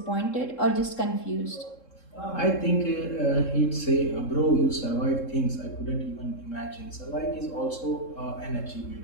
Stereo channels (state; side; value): late; right; 3.7 ms